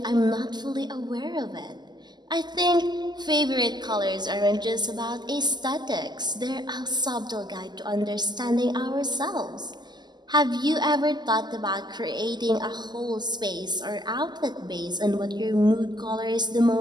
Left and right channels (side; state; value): left; late; 0.21 ms